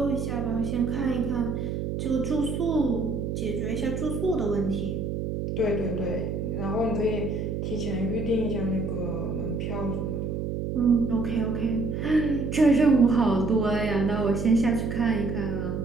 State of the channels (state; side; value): noise; right; hum, 3 dB below the sound